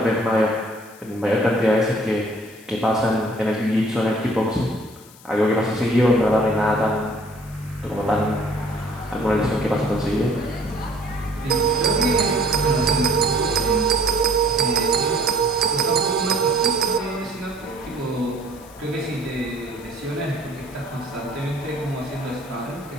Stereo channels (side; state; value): left; noise; hiss, 23 dB below the sound